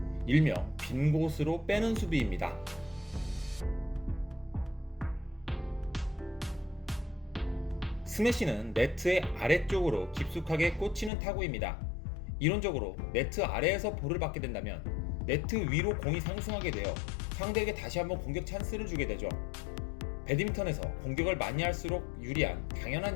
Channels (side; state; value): right; drops out; at 11.1 s